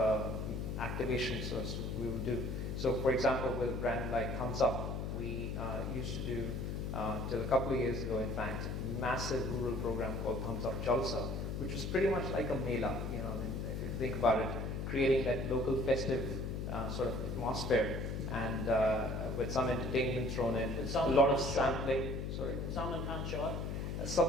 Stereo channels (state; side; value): noise; left; hum, 3 dB below the sound